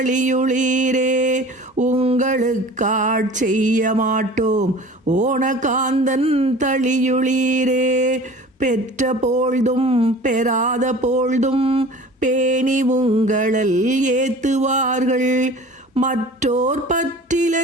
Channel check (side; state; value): both; normal; correlation 0.42